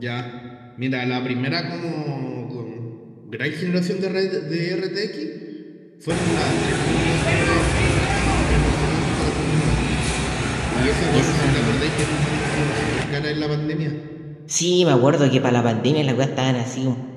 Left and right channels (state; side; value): identical; both; correlation 1.00